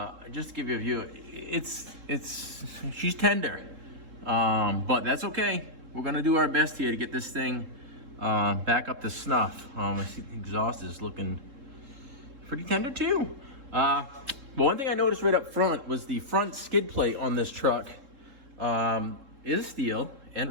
Just to give you a view, she's tender, but that's okay. We're gonna do our best here to get this thing back up to snuff. I see the exhaust is looking pretty tender too. But one thing I noticed right up front was the front skid plate on this truck is steel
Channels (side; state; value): left; late; 3.7 ms